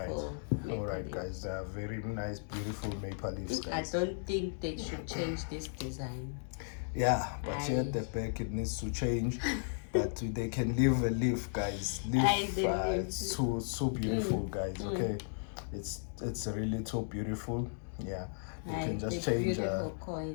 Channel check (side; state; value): right; silent; digital silence